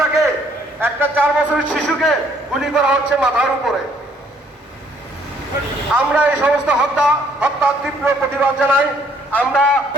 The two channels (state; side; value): normal; both; correlation 0.64